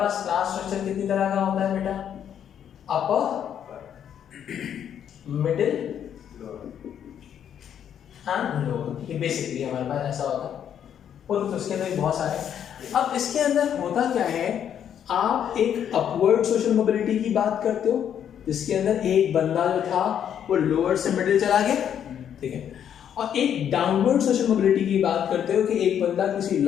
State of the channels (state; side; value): quieter; right; 9.2 dB